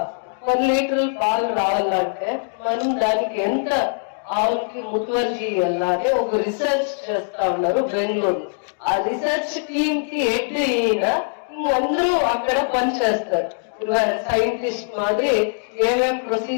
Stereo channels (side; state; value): right; silent; digital silence